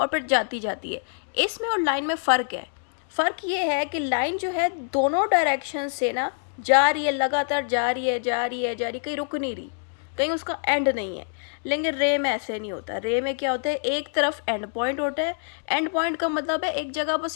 फिर जाती जाती है। इसमें और लाइन में फ़र्क है। फ़र्क ये है कि लाइन जो है दोनों डायरेक्शन से ना जा रही है, लगातार जा रही है, कहीं रुक नहीं रही, कहीं उसका एंड नहीं है। लेकिन रे में ऐसे नहीं होता। रे में क्या होता है, एक तरफ एंड पॉइंट होता है। एंड पॉइंट का मतलब है एक जगह बस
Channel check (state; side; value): silent; right; digital silence